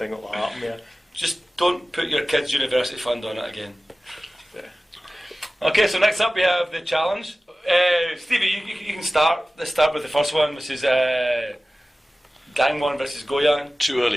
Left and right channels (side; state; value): both; normal; correlation 0.97